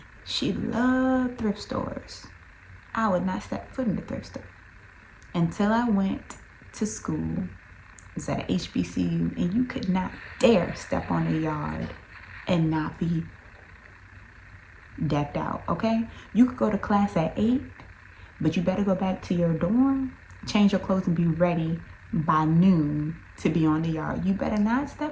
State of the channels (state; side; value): identical; both; correlation 1.00